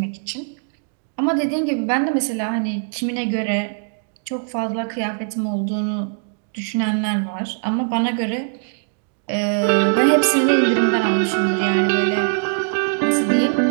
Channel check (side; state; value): left; silent; digital silence